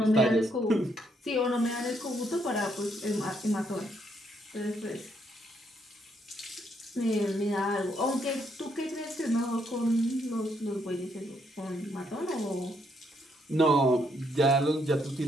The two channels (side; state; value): both; normal; correlation 0.73